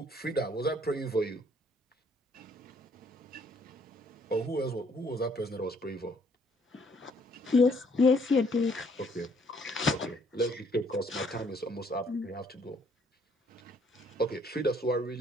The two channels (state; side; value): normal; both; correlation 0.65